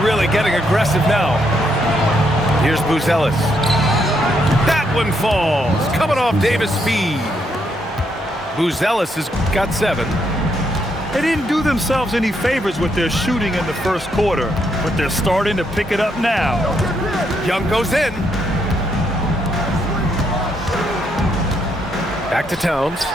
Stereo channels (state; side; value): normal; both; correlation 0.76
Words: really getting aggressive now. Here's Buzelis. That one falls. Coming off Davis' speed. Buzelis has got 7. They didn't do themselves any favors with their shooting in the first quarter, but they're starting to pick it up now. Young goes in. Back to Towns.